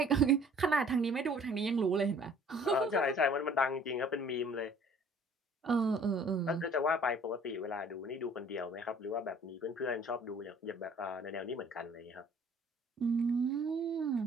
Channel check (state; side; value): normal; both; correlation 0.54